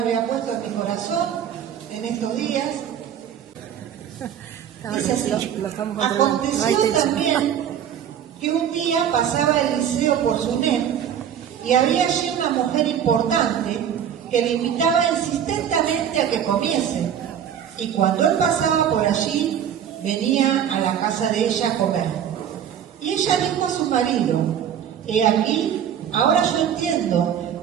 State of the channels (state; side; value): quieter; left; 9.1 dB